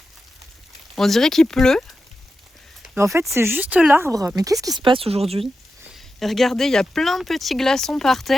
On dirait qu'il pleut. Mais en fait c'est juste l'arbre. Mais qu'est-ce qui se passe aujourd'hui? Et regardez, il y a plein de petits glaçons par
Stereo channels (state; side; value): normal; both; correlation 0.90